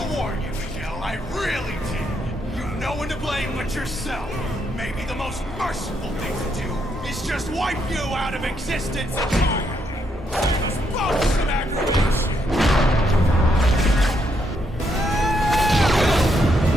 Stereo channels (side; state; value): both; normal; correlation 0.77